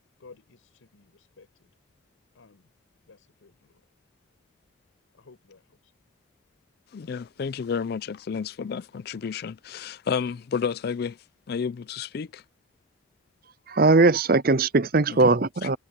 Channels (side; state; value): both; normal; correlation 0.11